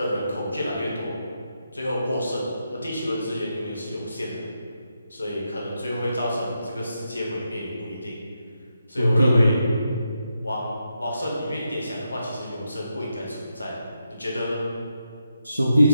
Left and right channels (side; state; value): both; inverted; correlation -0.84